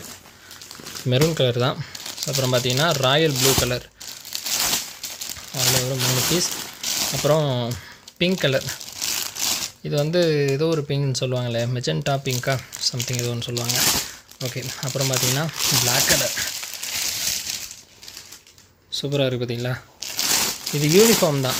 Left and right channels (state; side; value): identical; both; correlation 1.00